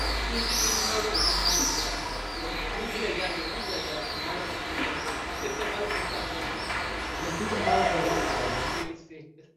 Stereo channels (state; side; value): identical; both; correlation 1.00